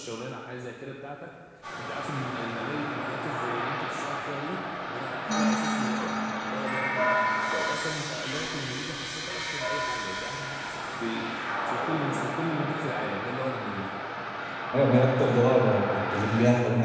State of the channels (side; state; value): both; identical; correlation 1.00